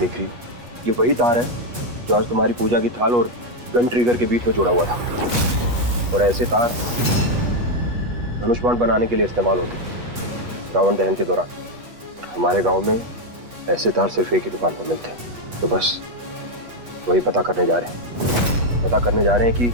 रही हो? ये वही तार है जो आज तुम्हारी पूजा की थाल और गन ट्रिगर के बीच में जुड़ा हुआ था। और ऐसे तार धनुष बाण बनाने के लिए इस्तेमाल होते रावण दहन के दौरान। हमारे गांव में ऐसे तार सिर्फ एक ही दुकान पर मिलते हैं। तो बस वही पता करने जा रहे हैं। पता करने जा रहे हैं कि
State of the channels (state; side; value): late; left; 8.3 ms